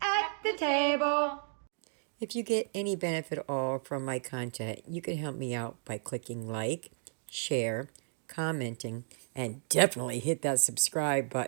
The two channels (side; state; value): left; silent; digital silence